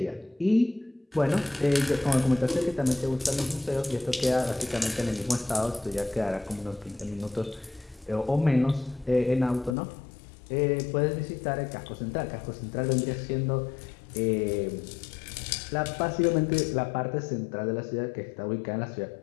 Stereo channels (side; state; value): right; drops out; at 9.8 s